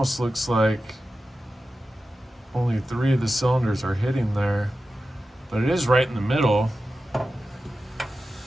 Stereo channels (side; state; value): both; normal; correlation 0.93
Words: looks like only 3 of the cylinders are hitting there, but it is right in the middle.